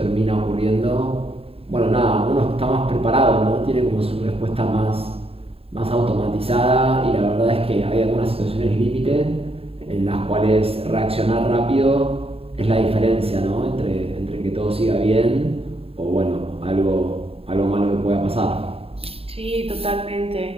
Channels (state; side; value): late; left; 0.28 ms